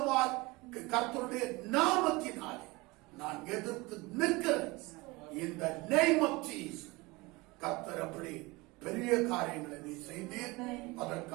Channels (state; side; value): quieter; left; 23.4 dB